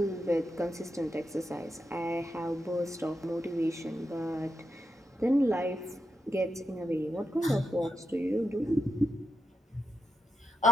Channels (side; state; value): both; normal; correlation 0.85